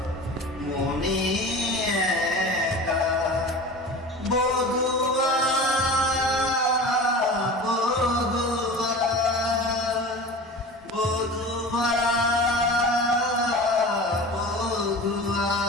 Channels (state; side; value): normal; both; correlation 0.35